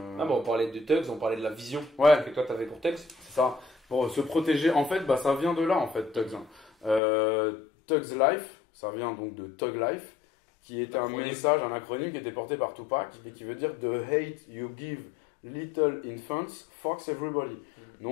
Ah bon, on parlait de Tugs, on parlait de la vision Ouais, que toi tu avais pour Tugs. c'est ça. Pour se protéger, en fait, bah, ça vient de là, en fait, Tugs. Tugs Life, ça vient donc de Tug Life, qui est un L'acronyme. message, un acronyme qui était porté par Tupac et Mhm. qui veut dire The hate you give little infants fucks everybody. Mhm.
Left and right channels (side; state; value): right; drops out; at 7.0 s